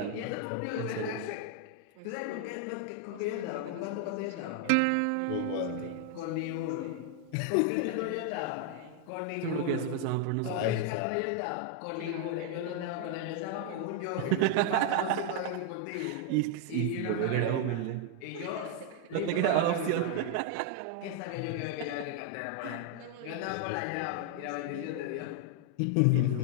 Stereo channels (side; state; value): both; different; correlation 0.00